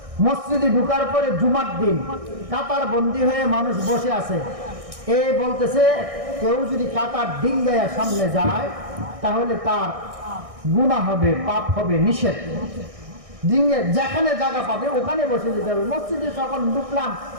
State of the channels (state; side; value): late; left; 1.6 ms